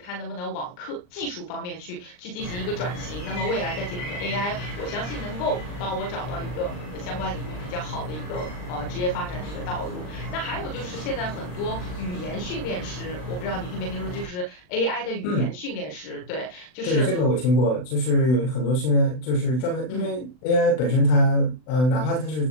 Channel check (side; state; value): right; late; 39 ms